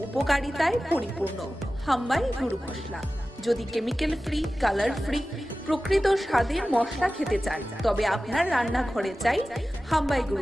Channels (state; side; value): normal; both; correlation 0.95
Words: উপকারিতায় পরিপূর্ণ হামবাই গুরু মশলা যদি কেমিক্যাল ফ্রি কালার ফ্রি প্রকৃত স্বাদের মশলা খেতে চান তবে আপনার রান্নাঘরে চাই হামবাই গুরু